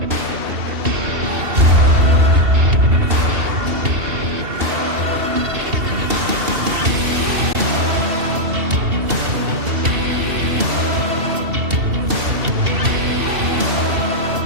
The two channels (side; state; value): left; late; 2.7 ms